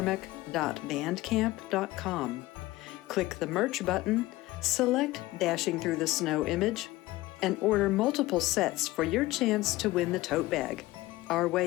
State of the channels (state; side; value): quieter; right; 18.4 dB